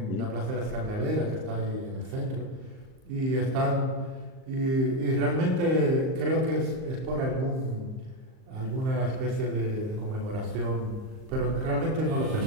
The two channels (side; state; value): left; late; 38 ms